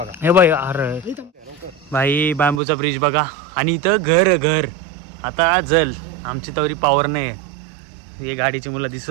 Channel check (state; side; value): drops out; left; at 2.6 s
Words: हे बाई अरे भाई बांबूचा ब्रिज बघा. आणि इथं घर आता जल आमची तवरी पॉवर नाही. हे गाडीची मुलं दिसत